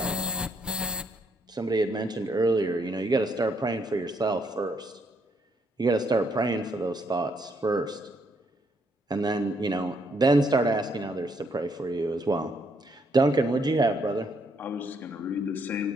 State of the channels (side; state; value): both; normal; correlation 0.73